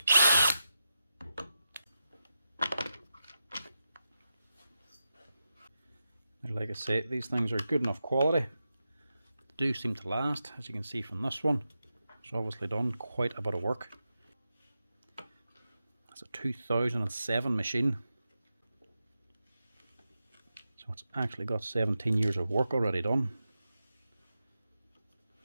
Like I say, these things are good enough quality. They do seem to last, as you can see from this one. It's obviously done quite a bit of work. It's a 2007 machine. So it's actually got 17 years of work already done.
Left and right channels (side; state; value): both; inverted; correlation -0.89